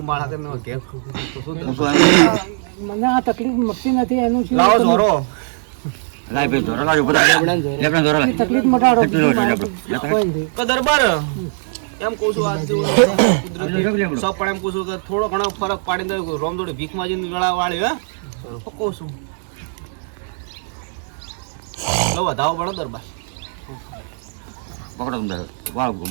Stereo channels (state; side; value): silent; left; digital silence